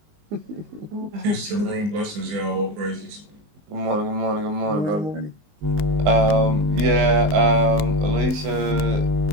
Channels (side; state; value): left; late; 19 ms